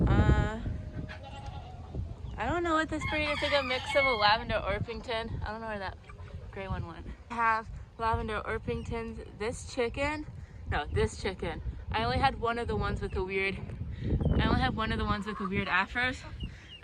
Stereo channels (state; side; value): identical; both; correlation 1.00